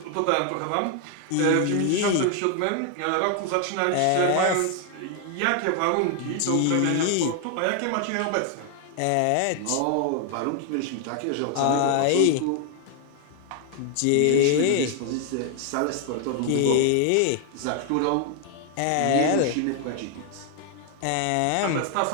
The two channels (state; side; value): different; both; correlation 0.00